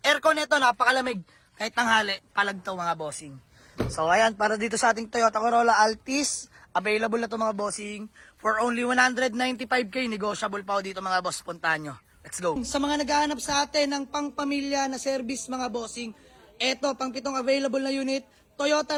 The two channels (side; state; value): both; identical; correlation 1.00